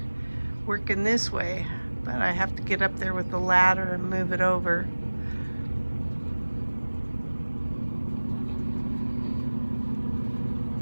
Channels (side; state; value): both; inverted; correlation -1.00